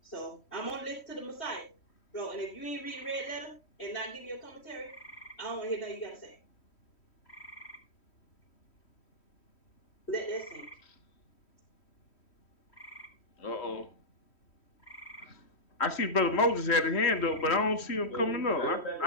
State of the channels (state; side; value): late; right; 3.1 ms